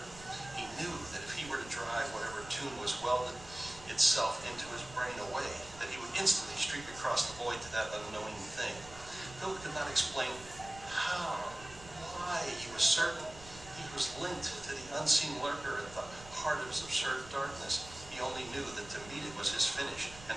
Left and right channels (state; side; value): noise; right; rumble, 17 dB below the sound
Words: He knew that if he were to drive whatever tune was welded itself into his brain away, that he would instantly streak across the void to that unknowing thing. Philip could not explain how, why. He was certain he was linked to the unseen lurker at the heart of his absurd darkness. He only knew that to meet it was his finish, and